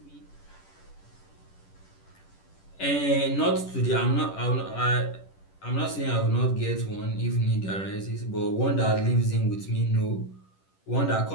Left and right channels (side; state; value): right; late; 10 ms